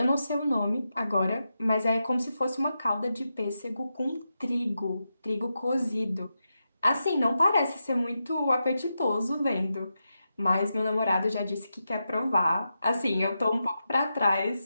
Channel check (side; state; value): both; inverted; correlation -0.88